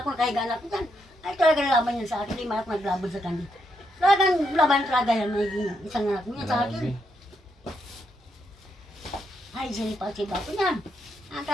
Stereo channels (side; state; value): both; normal; correlation 0.79